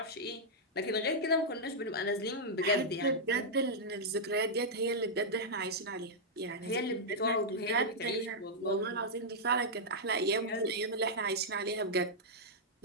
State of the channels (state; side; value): normal; both; correlation -0.07